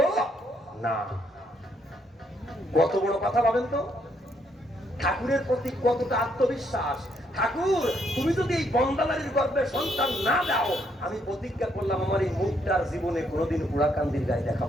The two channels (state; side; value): normal; both; correlation 0.73